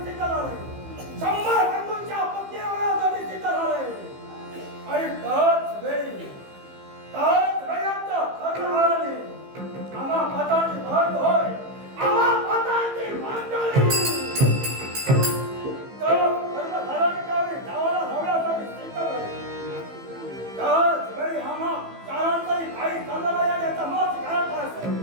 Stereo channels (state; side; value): late; left; 15 ms